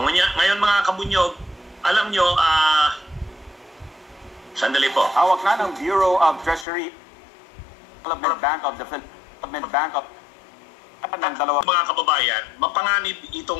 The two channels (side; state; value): right; drops out; at 6.7 s